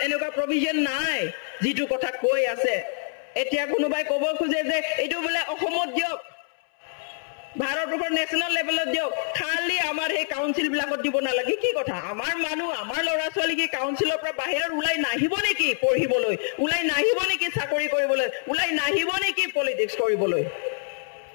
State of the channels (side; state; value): right; silent; 61 dB below the other